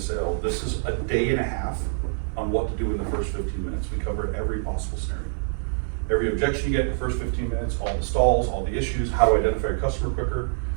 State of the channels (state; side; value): silent; left; digital silence